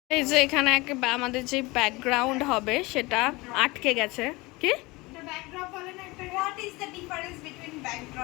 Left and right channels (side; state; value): right; quieter; 23.0 dB